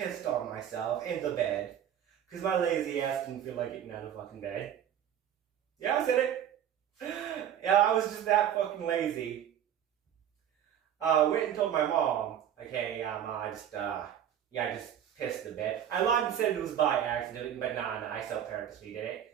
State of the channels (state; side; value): quieter; left; 9.9 dB